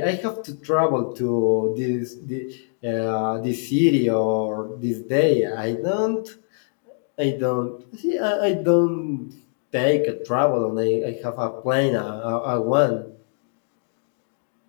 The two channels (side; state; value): right; silent; 56 dB below the other